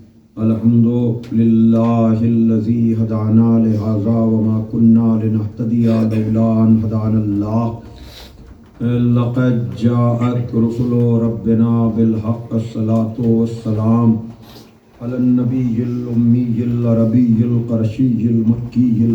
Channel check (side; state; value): both; identical; correlation 1.00